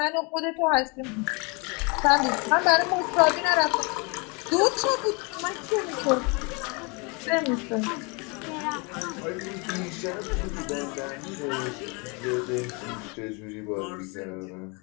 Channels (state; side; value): quieter; right; 31.0 dB